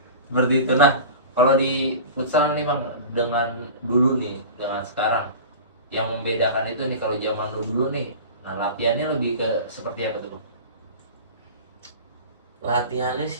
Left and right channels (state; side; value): inverted; both; correlation -0.35